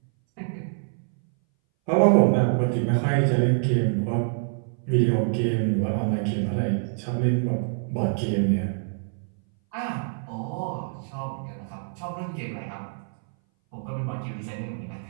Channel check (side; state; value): left; silent; 59 dB below the other